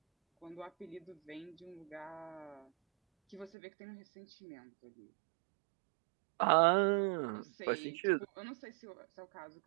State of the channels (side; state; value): left; drops out; at 3.5 s